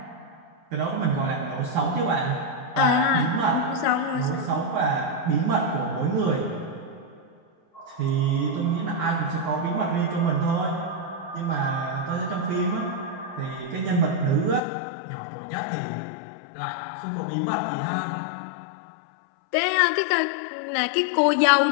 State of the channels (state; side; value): drops out; right; at 14.6 s